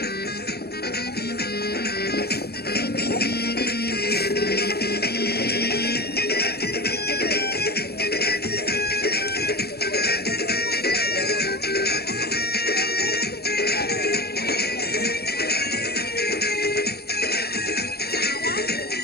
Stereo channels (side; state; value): right; late; 0.46 ms